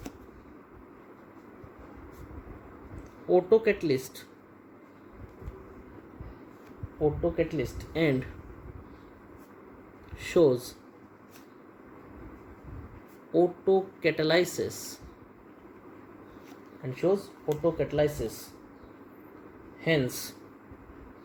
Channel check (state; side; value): identical; both; correlation 1.00